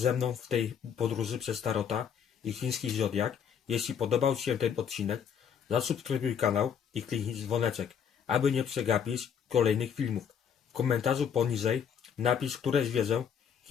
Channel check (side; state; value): right; quieter; 7.8 dB